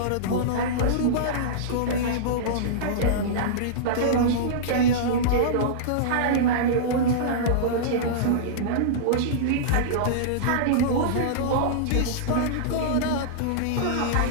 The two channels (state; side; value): different; both; correlation -0.03